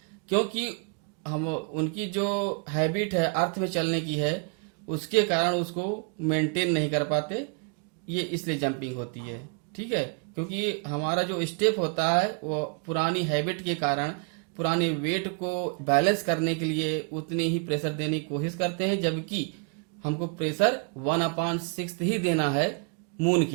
क्योंकि हम उनकी जो हैबिट है अर्थ में चलने की है, उसके कारण उसको मेंटेन नहीं कर पाते, ये इसलिए जंपिंग होती है। ठीक है, क्योंकि हमारा जो स्टेप होता है वो पुरानी हैबिट के कारण पुराने वेट को बैलेंस करने के लिए उतनी ही प्रेशर देने की कोशिश करते हैं, जबकि हमको प्रेशर 1/6 ही देना है मून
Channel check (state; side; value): quieter; left; 39.3 dB